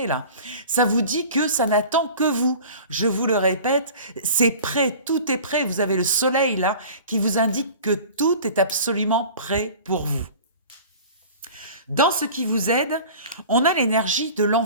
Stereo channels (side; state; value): both; inverted; correlation -0.41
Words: ça vous dit que ça n'attend que vous. Je vous le répète, c'est prêt, tout est prêt. Vous avez le soleil là qui vous indique que tout est absolument prêt pour vous. Dans ce qui vous aide, on a l'énergie de